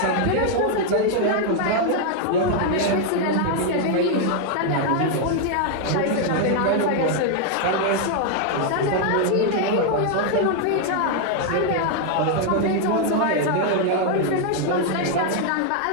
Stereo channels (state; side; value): different; both; correlation 0.00